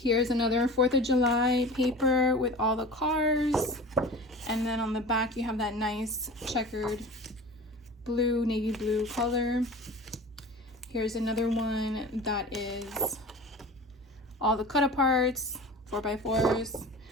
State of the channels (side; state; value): both; normal; correlation 0.37